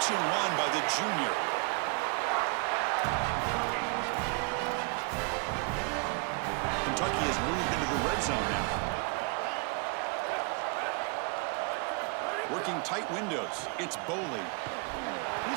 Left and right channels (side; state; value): left; quieter; 32.7 dB